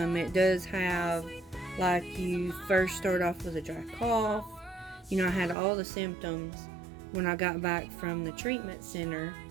it does have, like, you first start off with a dry cough. I had all the symptoms when I got back from the treatment center.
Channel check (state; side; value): drops out; left; at 5.6 s